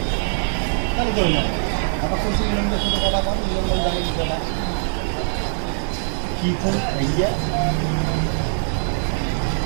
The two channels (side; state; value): left; silent; digital silence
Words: তাহলে ধরে নেন আপনার খুশি মিলনদের সাথে কথা বল, মিলন জানি বিষয়টা কী ফোন এইয়া